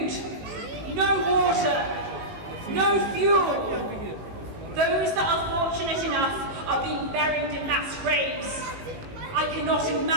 no water, no fuel. Those that are fortunate enough are being buried in mass graves. I cannot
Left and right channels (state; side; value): late; left; 18 ms